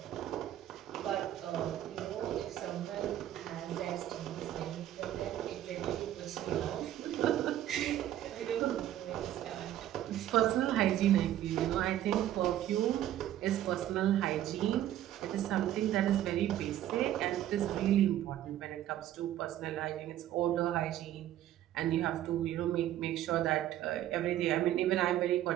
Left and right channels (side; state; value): left; quieter; 12.5 dB